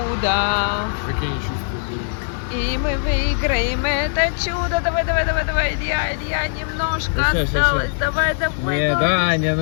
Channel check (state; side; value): silent; right; digital silence